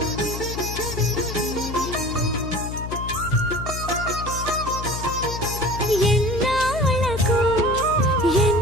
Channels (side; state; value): left; noise; hum, 7 dB below the sound